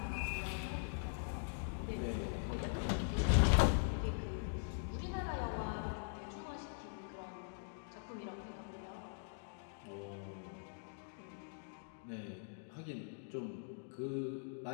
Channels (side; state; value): right; silent; digital silence